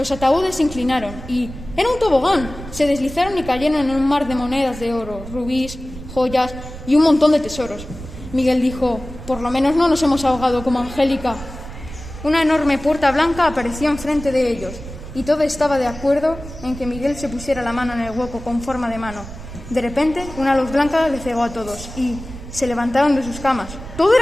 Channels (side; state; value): right; noise; rumble, 13 dB below the sound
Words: ataúdes se inclinaron y ¡era un tobogán! Se deslizaron y cayeron en un mar de monedas de oro, rubíes, joyas y un montón de tesoros. Miguel dijo: por lo menos no nos hemos ahogado como Angélica. Una enorme puerta blanca apareció enfrente de ellos y todo estaba de acuerdo en que Miguel se pusiera la mano en el hueco con forma de mano. De repente, una luz blanca les cegó a todos y se levantaron de sus camas. ¡Todo